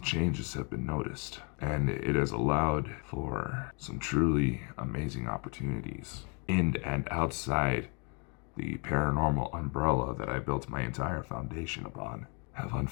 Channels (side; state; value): right; quieter; 34.9 dB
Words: changes have been noticed, and it has allowed for some truly amazing opportunities in and outside the paranormal umbrella that I built my entire foundation upon have